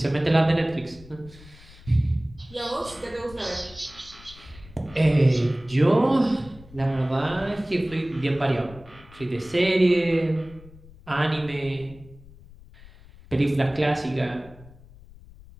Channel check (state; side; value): noise; left; rumble, 21 dB below the sound